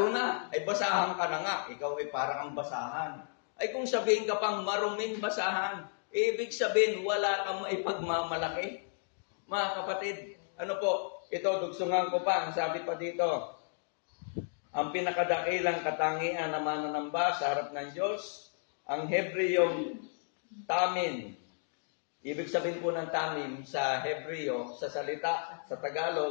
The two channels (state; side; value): silent; right; digital silence